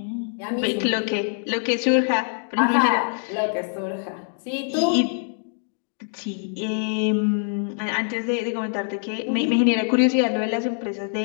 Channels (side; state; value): right; silent; 60 dB below the other